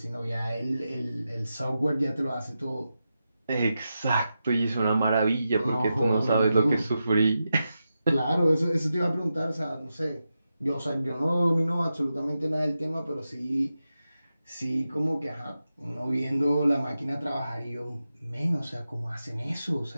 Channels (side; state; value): both; inverted; correlation -0.90